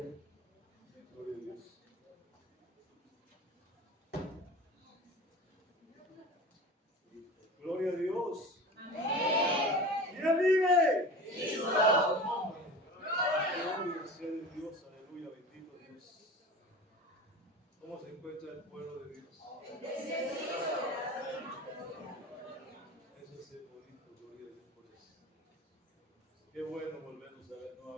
Gloria a Dios. Gloria a Dios. ¿Quién vive? Gloria sea de Dios, aleluya, bendito Dios. ¿Cómo se encuentra el pueblo de Dios? Eso es el bonito, gloria a Dios por eso. Qué bueno volvernos a ver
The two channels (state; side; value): normal; both; correlation 0.34